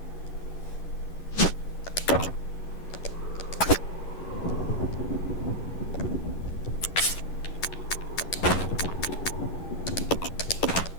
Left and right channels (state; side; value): late; right; 11 ms